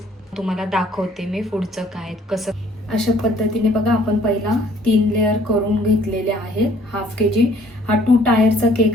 तुम्हाला दाखवते मी पुढचं काय कसं. अशा पद्धतीने बघा, आपण पहिला 3 लेअर करून घेतलेले आहेत. हाफ kg हा 2 टायरचा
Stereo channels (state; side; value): normal; both; correlation 0.59